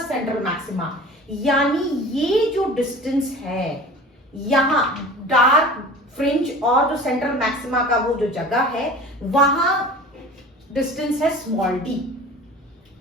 maxima, यानी ये जो डिस्टेंस है यहां डार्क फ्रिंज और जो सेंट्रल मैक्सिमा का वो जो जगह है वहां डिस्टेंस है स्मॉल d।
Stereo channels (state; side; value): normal; both; correlation 0.40